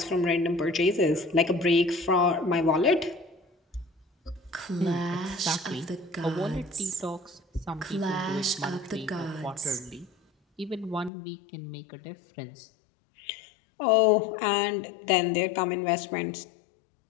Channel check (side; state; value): right; drops out; at 11.1 s